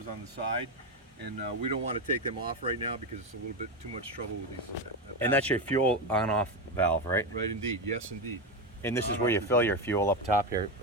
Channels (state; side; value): normal; both; correlation 0.14